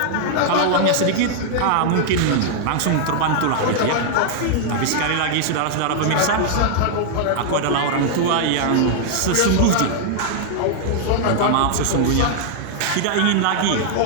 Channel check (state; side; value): different; both; correlation -0.01